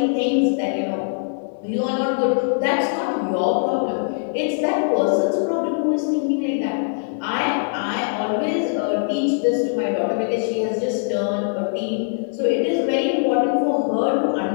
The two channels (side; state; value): right; silent; 64 dB below the other